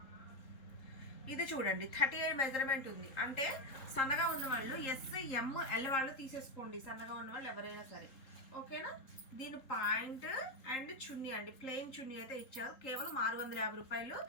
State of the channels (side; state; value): right; late; 3.8 ms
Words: ఇది చూడండి 38 మెజర్మెంట్ ఉంది. అంటే సన్నగా ఉన్న వాళ్ళు ఎస్, ఎం, ఎల్ వాళ్ళు తీసేసుకోండి, సన్నగా ఉన్న వాళ్ళు ఎవరైనా సరే, ఓకేనా. దీని పాయింట్ అండ్ చున్నీ అండి, ప్లెయిన్ చున్నీ అయితే ఇచ్చారు. కేవలం 650 రూపాయలు.